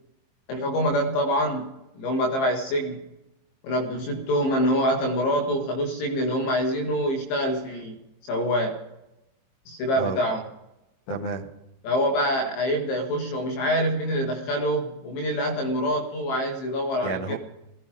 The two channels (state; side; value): late; right; 23 ms